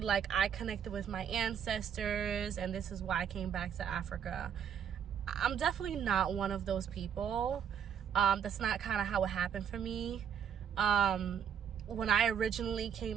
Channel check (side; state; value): left; quieter; 8.3 dB